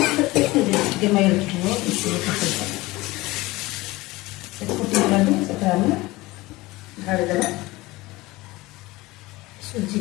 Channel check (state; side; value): quieter; right; 20.4 dB